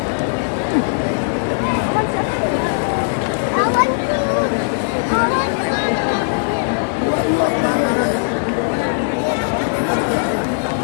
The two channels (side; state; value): right; silent; digital silence